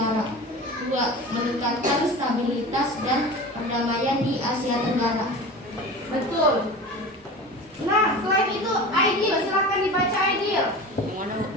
2. Meningkatkan stabilitas dan perdamaian di Asia Tenggara. Betul. Nah, selain itu, Aidil, silakan dibaca Aidil.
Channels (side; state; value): both; normal; correlation 0.33